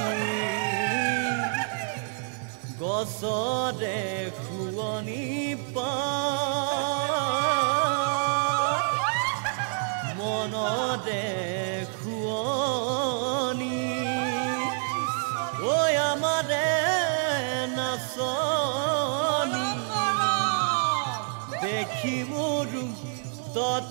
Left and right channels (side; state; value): left; silent; digital silence